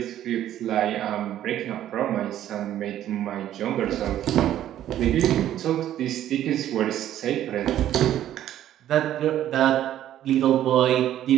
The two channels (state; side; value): quieter; left; 12.0 dB